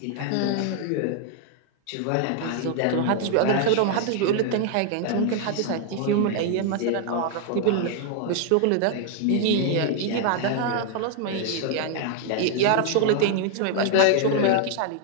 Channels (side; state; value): both; different; correlation 0.00